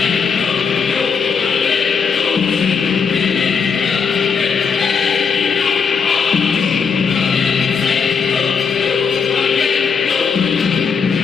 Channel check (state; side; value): quieter; right; 5.9 dB